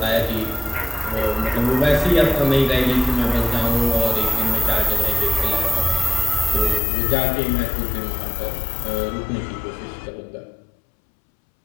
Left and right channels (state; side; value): drops out; right; at 6.8 s